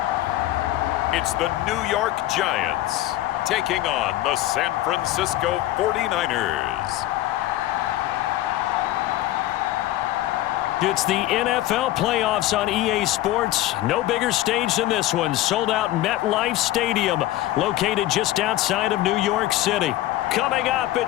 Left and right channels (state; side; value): quieter; right; 15.3 dB